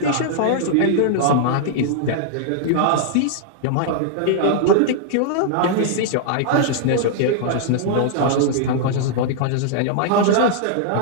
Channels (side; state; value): both; different; correlation -0.01